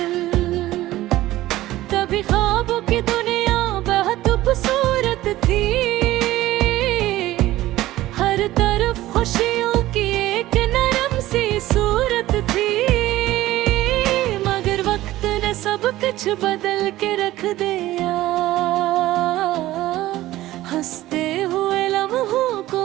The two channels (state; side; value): quieter; left; 15.9 dB